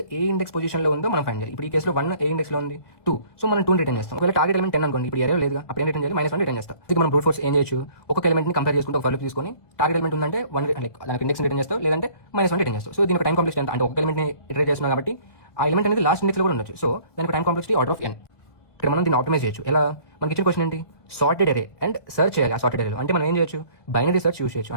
ఏ ఇండెక్స్ పొజిషన్ లో ఉందో మనం ఫైండ్ చేయాలి. ఇప్పుడు ఈ కేసులో 1 ఏ ఇండెక్స్ లో ఉంది, 2. సో మనం 2 రిటర్న్ చేస్తాం. ఒకవేళ టార్గెట్ ఎలిమెంట్ 10 అనుకోండి, ఇప్పుడు అరే లేదు, అప్పుడు ఏం రిటర్న్ చేయాలి? -1 రిటర్న్ చేస్తాం. ఇది మనం బ్రూట్ ఫోర్స్ ఏం చేయొచ్చు, ఒక్కొక్క ఎలిమెంట్ ని కంపేర్ చేసుకుంటే ఒక ఫర్ తీసుకొని టార్గెట్ ఎలిమెంట్ ఉందంటే 1 దానికి ఇండెక్స్ రిటర్న్ చేస్తాం, లేదంటే -1 రిటర్న్ చేస్తాం. సో దీని టైం కాంప్లెక్స్ ఎంత అంటే ఒక ఎలిమెంట్ ని ఇటరేట్ చేస్తున్నాం కాబట్టి ఆ ఎలిమెంట్ అనేది లాస్ట్ ఇండెక్స్ లో కూడా ఉండొచ్చు. సో దానికి time complexity order of n. ఇక్కడ మనం దీన్ని ఆప్టిమైజ్ చేయొచ్చు. ఎలా? మనకి ఇచ్చిన క్వశ్చన్ ఏంటి? సార్టెడ్ అరే అండ్ సర్చ్ చేయాలి. ఆ సార్టెడ్ అరేలో అంటే మనం ఏం చేయొచ్చు? బైనరీ సర్చ్ యూస్ చేయొచ్చు.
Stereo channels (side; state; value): right; late; 1.6 ms